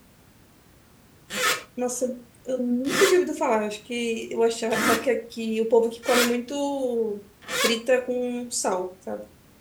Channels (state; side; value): identical; both; correlation 1.00